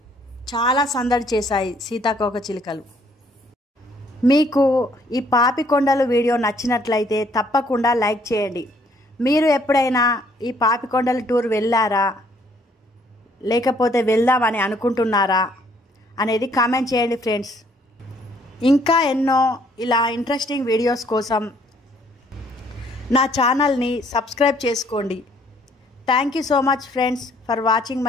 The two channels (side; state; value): both; normal; correlation 0.64